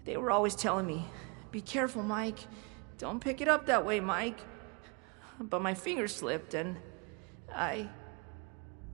They were always telling me, "Be careful, Mike. Don't pick it up that way, Mike." But my finger slipped and I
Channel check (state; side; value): quieter; left; 32.2 dB